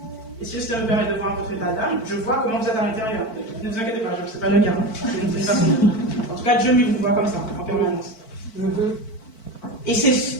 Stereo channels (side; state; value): right; late; 4.5 ms